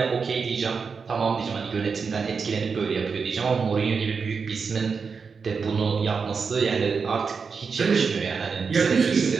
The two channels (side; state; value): left; quieter; 5.4 dB